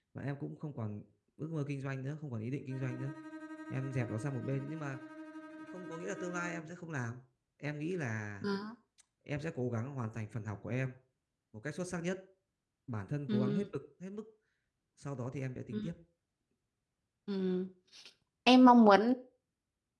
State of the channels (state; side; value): identical; both; correlation 1.00